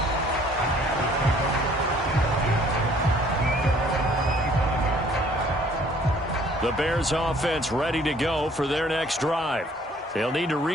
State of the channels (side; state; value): both; normal; correlation 0.58